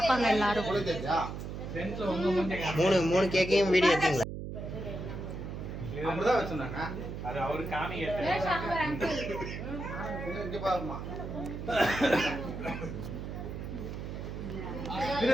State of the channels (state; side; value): noise; right; hum, 7 dB below the sound